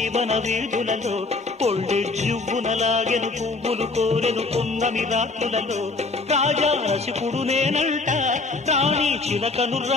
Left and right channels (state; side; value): quieter; right; 3.6 dB